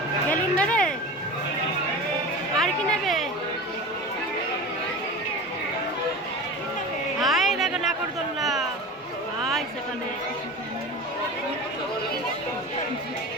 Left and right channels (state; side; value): normal; both; correlation 0.31